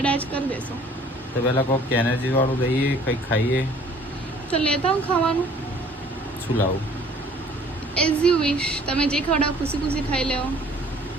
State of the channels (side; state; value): both; normal; correlation 0.54